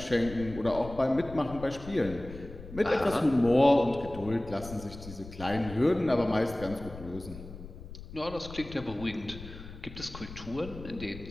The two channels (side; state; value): left; noise; rumble, 13 dB below the sound